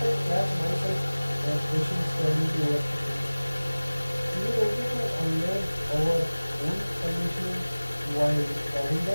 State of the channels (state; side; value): inverted; both; correlation -0.99